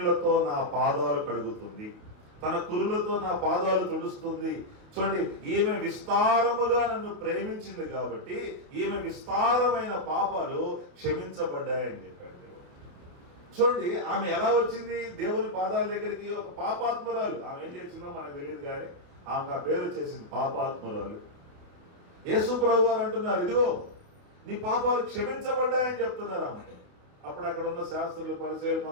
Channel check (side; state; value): left; late; 29 ms